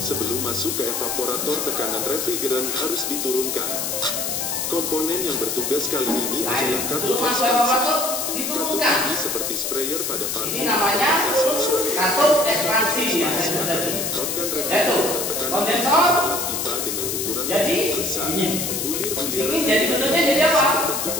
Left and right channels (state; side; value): noise; left; hiss, 2 dB below the sound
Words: masuk ke evaporator, tekanan refrigeran harus diturunkan. Komponen yang bertugas kali ini Nah, adalah itu katup masuk ekspansi. evaporator Katup diturunkan. ini seperti sprayer pada parfum. Ini namanya katup ekspansi yang saya sebut tadi. Menyemprotkan Yaitu refrigeran tekanan kondensor. dalam pipa dengan ukuran Jadi, besar. Bulir-bulir Ini jadi bentuknya jadi apa? bentuk